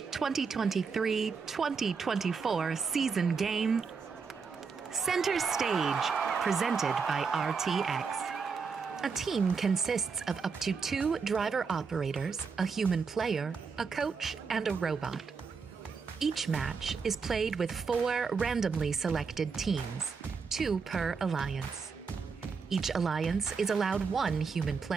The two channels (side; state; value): left; quieter; 5.3 dB